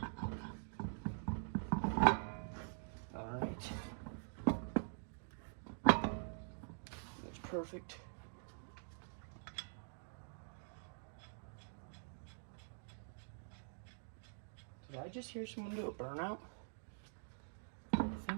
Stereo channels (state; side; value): silent; left; digital silence